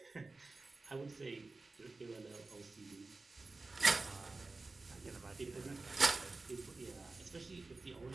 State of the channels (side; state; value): left; quieter; 3.5 dB